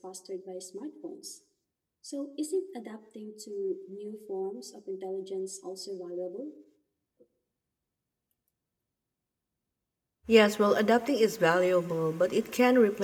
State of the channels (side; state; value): both; identical; correlation 1.00